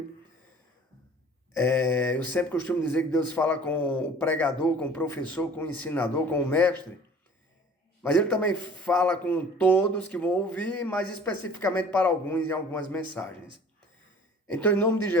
Eu sempre costumo dizer que Deus fala com o pregador, com o professor, com o ensinador, com o mestre, mas Ele também fala com todos que vão ouvir, mas especificamente para alguns em algumas mensagens. Então, em nome de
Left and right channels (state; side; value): normal; both; correlation 0.47